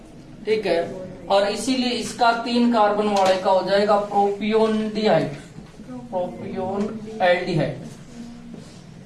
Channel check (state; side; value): identical; both; correlation 1.00